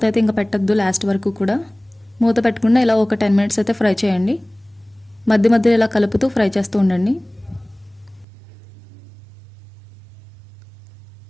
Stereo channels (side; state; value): left; drops out; at 8.2 s